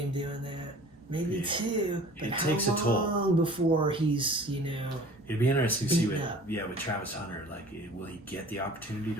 doing that, maybe 2. But it takes a toll. How long before he's, you know, it'd be interesting to see with Travis Hunter, like, will he get the opportunity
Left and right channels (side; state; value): both; normal; correlation 0.46